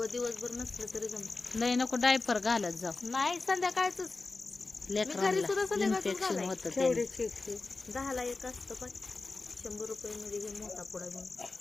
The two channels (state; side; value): quieter; right; 3.6 dB